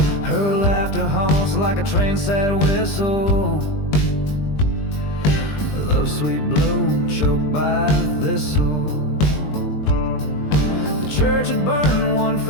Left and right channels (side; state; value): right; late; 20 ms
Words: Her laughter haunts like a train's sad whistle. Love's sweet bloom choked by thistle. The church had burned one